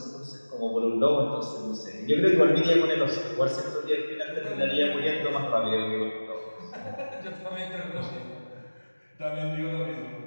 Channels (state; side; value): inverted; both; correlation -1.00